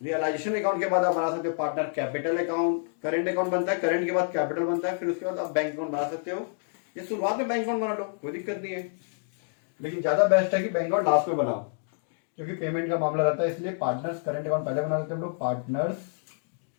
रियलाइजेशन अकाउंट के बाद आप बना सकते हो partner capital account, current account बनता है, करेंट के बाद कैपिटल बनता है, फिर उसके बाद आप बैंक अकाउंट बना सकते हो। ये शुरुआत में बैंक अकाउंट बना लो, कोई दिक्कत नहीं है, लेकिन ज्यादा बेस्ट है कि बैंक अकाउंट लास्ट में बनाओ, क्योंकि पेमेंट का मामला रहता है, इसलिए पार्टनर्स करेंट अकाउंट पहले बना लेते हैं हम लोग, पार्टनर्स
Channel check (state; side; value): silent; right; digital silence